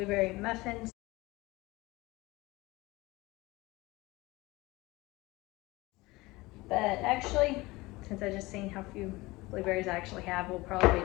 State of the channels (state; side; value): quieter; right; 21.3 dB